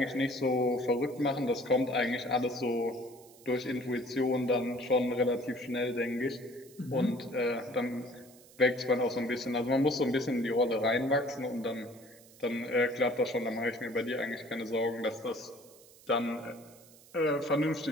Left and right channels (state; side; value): noise; right; hiss, 24 dB below the sound